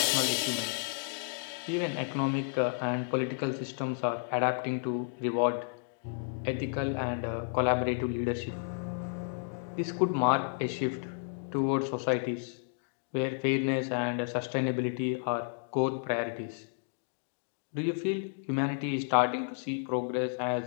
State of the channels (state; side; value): silent; right; digital silence